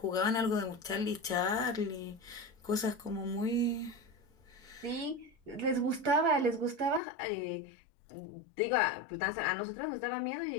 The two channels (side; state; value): right; drops out; at 7.0 s